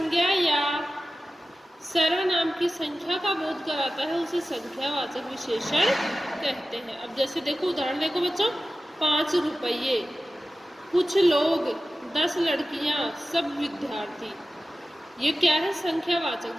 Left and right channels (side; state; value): both; normal; correlation 0.95